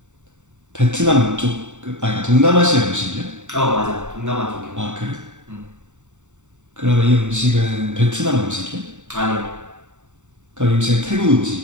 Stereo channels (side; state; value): left; late; 0.84 ms